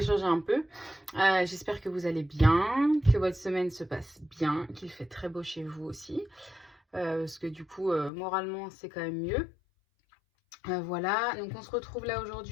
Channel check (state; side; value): drops out; right; at 8.1 s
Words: changer un peu. J'espère que vous allez bien, que votre semaine se passe bien, qu'il fait très beau chez vous aussi. Parce que du coup, moralement c'est quand même mieux. Voilà, donc on se retrouve là